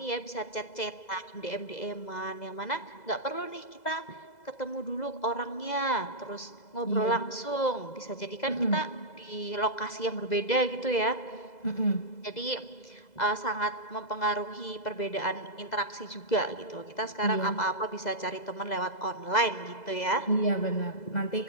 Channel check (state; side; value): late; right; 2.0 ms